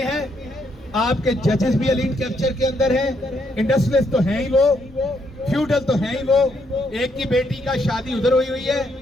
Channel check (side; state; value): both; normal; correlation 0.75